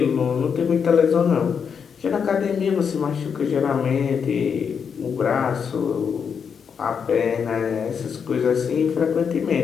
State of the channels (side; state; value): right; quieter; 6.7 dB